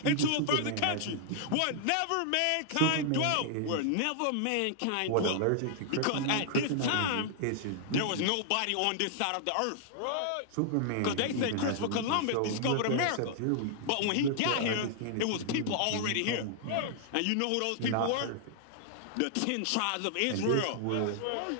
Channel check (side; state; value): both; different; correlation -0.01